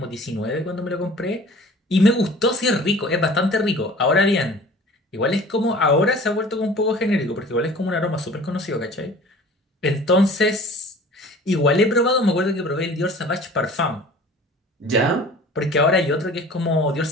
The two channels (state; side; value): normal; both; correlation 0.45